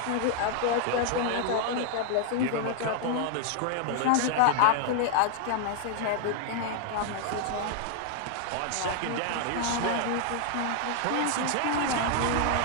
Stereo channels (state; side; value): different; both; correlation 0.00